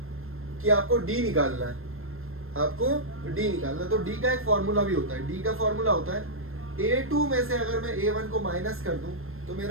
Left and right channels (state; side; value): late; left; 0.61 ms